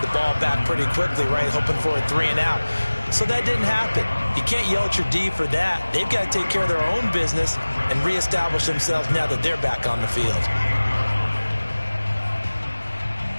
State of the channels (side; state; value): both; inverted; correlation -1.00